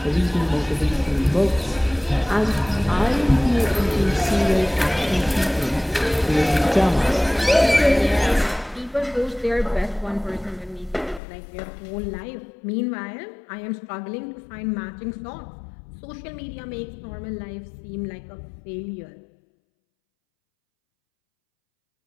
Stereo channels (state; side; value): drops out; right; at 11.2 s